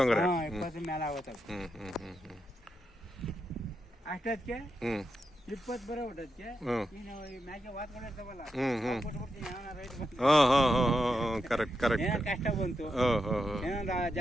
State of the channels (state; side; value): normal; both; correlation 0.86